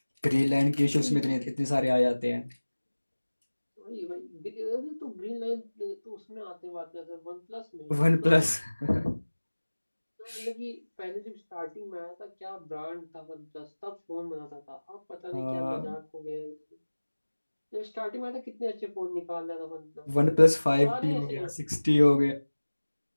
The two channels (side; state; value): both; inverted; correlation -1.00